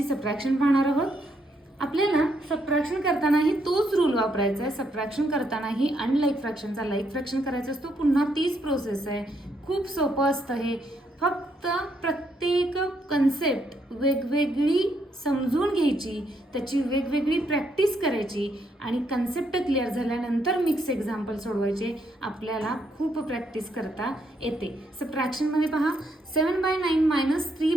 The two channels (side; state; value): both; normal; correlation 0.75